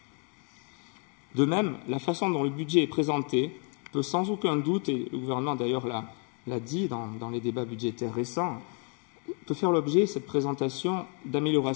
De même, la façon dont le budget est présenté peut sans aucun doute, et le gouvernement d'ailleurs l'a dit dans les débats budgétaires récents, peut faire l'objet, cette présentation,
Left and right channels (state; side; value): quieter; right; 38.6 dB